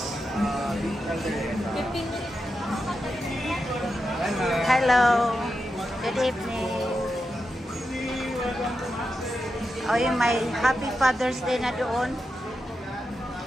Hello. Good evening. Oh, yung may Happy Father's Day na doon.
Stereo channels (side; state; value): both; normal; correlation 0.88